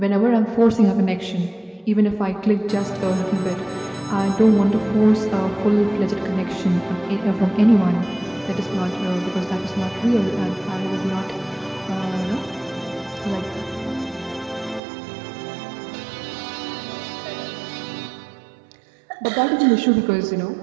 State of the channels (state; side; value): drops out; left; at 14.8 s